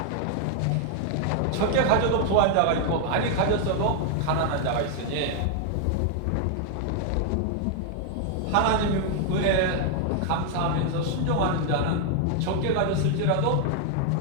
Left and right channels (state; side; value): different; both; correlation 0.00